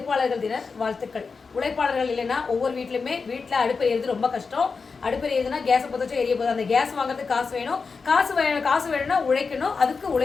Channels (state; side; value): quieter; right; 4.8 dB